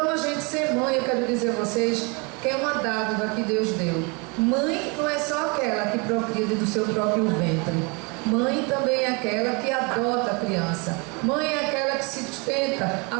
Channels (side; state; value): left; quieter; 30.8 dB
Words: a gente ser mãe, eu quero dizer a vocês, que é uma dádiva que Deus deu. Mãe não é só aquela que procria do seu próprio ventre. Mãe também é aquela que adota a criança. Mãe é aquela que sustenta